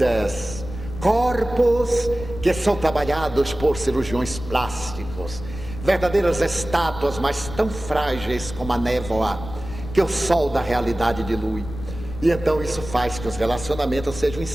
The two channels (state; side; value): noise; left; rumble, 11 dB below the sound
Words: corpos que são trabalhados por cirurgiões plásticos, verdadeiras estátuas, mas tão frágeis como a névoa que o sol da realidade dilui. E então isso faz que os relacionamentos sejam